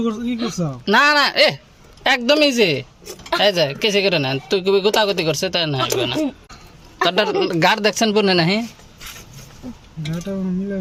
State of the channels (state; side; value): identical; both; correlation 1.00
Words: করছ কি করছ? না না এ একদম ইজি, এই যে কেসে করে না তুই কবি গোতাগতি করছে তাই না হইবে না। তোর গাড় দেখছেন পুনে নাহি গাটা মিলা